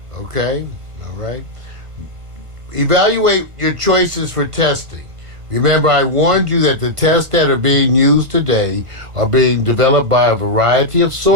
Okay? All right? Evaluate your choices for testing. Remember, I warned you that the tests that are being used today are being developed by a variety of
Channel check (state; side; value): late; left; 1.4 ms